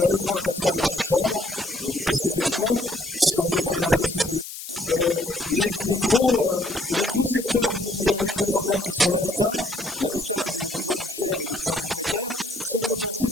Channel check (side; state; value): left; noise; hiss, 10 dB below the sound